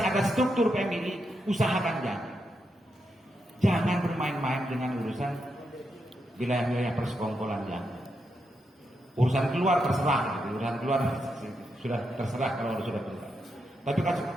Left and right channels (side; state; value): both; normal; correlation 0.83